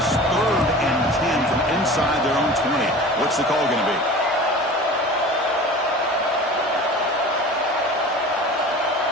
3rd and 10 from inside their own 20. What's the call going to be?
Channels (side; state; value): both; normal; correlation 0.38